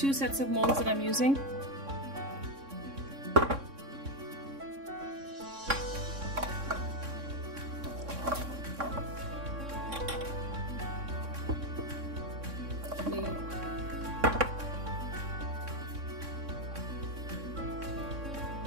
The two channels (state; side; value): late; left; 3.6 ms